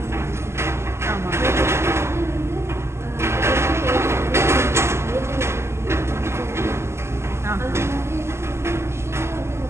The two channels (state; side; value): late; left; 0.13 ms